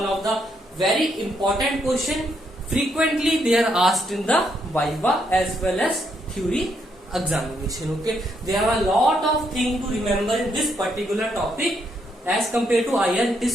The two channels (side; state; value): both; normal; correlation 0.75